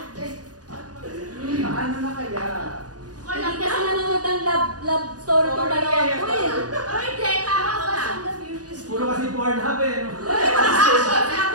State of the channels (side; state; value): left; late; 0.68 ms